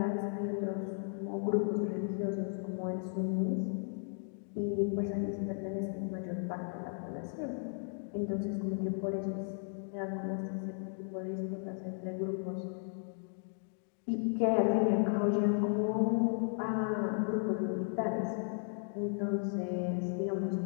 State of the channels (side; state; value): right; silent; 54 dB below the other